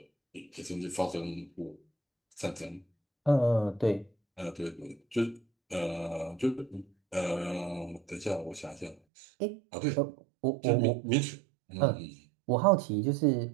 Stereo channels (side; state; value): left; drops out; at 9.0 s